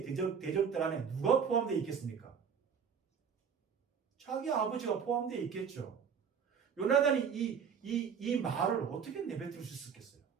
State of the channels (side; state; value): left; quieter; 6.9 dB